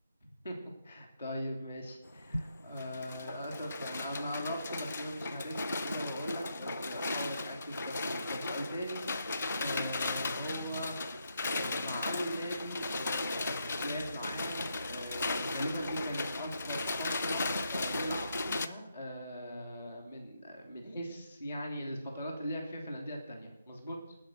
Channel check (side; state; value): both; inverted; correlation -0.79